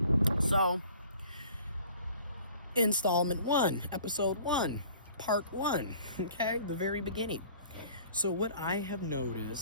So, installment 1, episode 1, part 1, okay, the very beginning. So what I have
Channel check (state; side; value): inverted; both; correlation -0.51